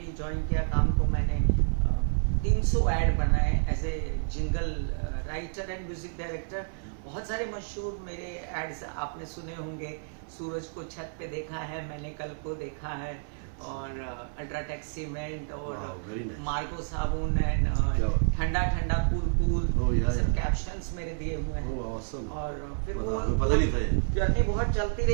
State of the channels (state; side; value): silent; left; 58 dB below the other